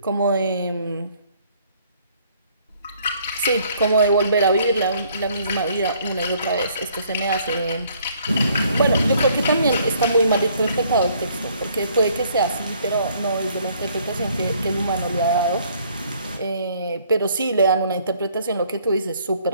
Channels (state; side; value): inverted; both; correlation -0.63